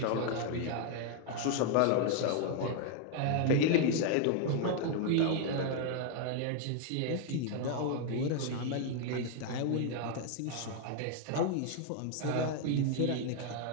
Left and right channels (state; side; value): different; both; correlation 0.00